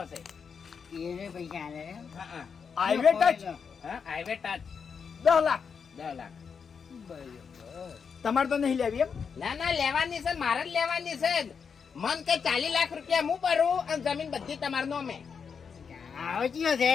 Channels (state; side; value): quieter; right; 6.2 dB